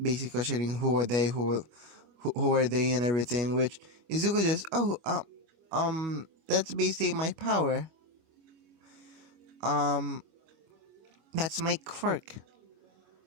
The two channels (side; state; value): left; late; 25 ms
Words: Basically questioning who are they and everything. Which Izuku just, that's basically my power. That's my quirk.